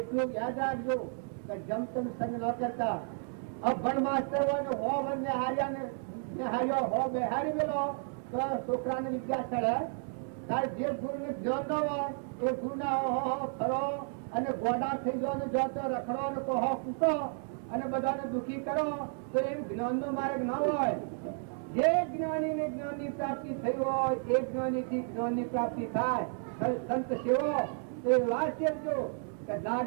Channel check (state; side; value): silent; left; 56 dB below the other